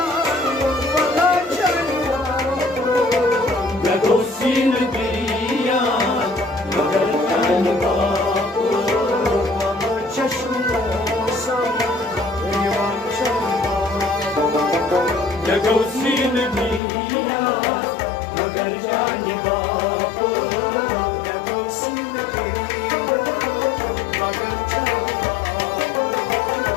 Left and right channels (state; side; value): drops out; right; at 16.8 s